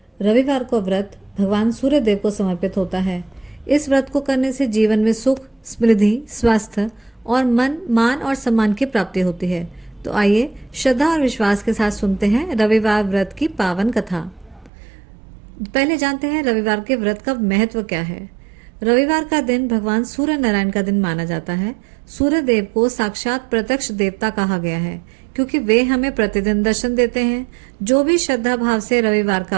रविवार को व्रत भगवान सूर्य देव को समर्पित होता है। इस व्रत को करने से जीवन में सुख, समृद्धि, स्वास्थ्य और मान और सम्मान की प्राप्ति होती है। तो आइए श्रद्धा और विश्वास के साथ सुनते हैं रविवार व्रत की पावन कथा। पहले जानते हैं रविवार के व्रत का महत्व क्या है। रविवार का दिन भगवान सूर्य नारायण का दिन माना जाता है। सूर्य देव को साक्षात प्रत्यक्ष देवता कहा गया है क्योंकि वे हमें प्रतिदिन दर्शन देते हैं। जो भी श्रद्धा भाव से रविवार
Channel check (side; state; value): left; drops out; at 14.7 s